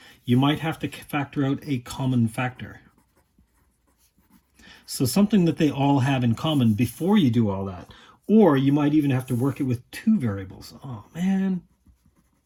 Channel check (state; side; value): identical; both; correlation 1.00